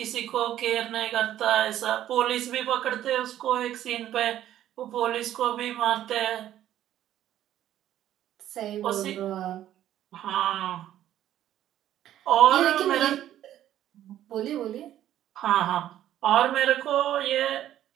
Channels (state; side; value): quieter; left; 12.1 dB